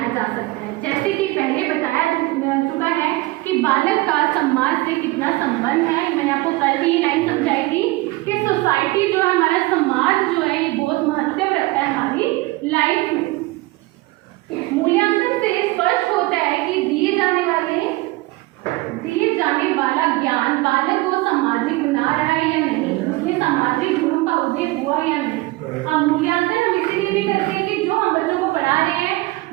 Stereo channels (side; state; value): left; quieter; 21.2 dB